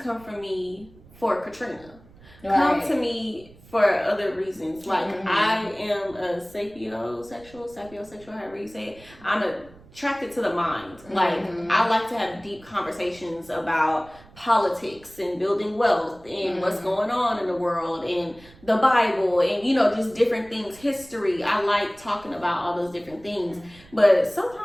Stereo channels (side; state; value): right; noise; rumble, 24 dB below the sound